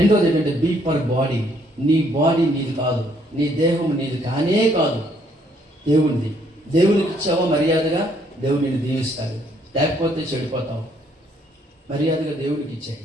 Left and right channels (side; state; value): both; normal; correlation 0.67